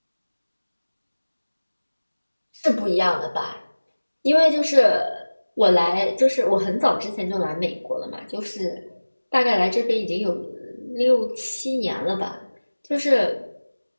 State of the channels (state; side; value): inverted; both; correlation -1.00